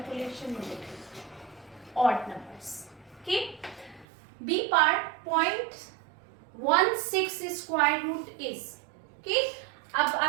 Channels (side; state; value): left; drops out; at 4.0 s